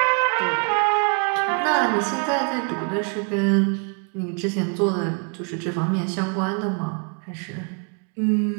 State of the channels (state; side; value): quieter; left; 39.1 dB